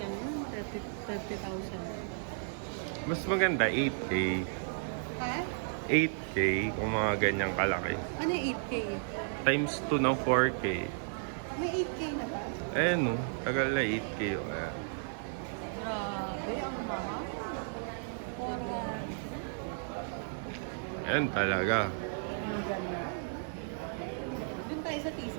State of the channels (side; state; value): left; silent; 55 dB below the other